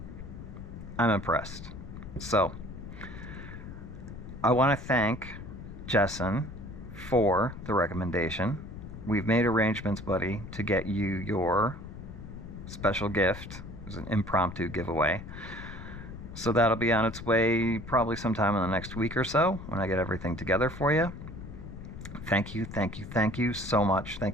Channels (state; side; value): noise; left; rumble, 11 dB below the sound